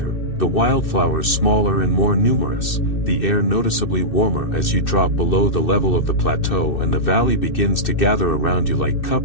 the wildflowers smaller and more numerous, the air noticeably warmer as you drop below the level of the plateau and the valley begins to gather around you like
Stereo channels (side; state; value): right; late; 2.6 ms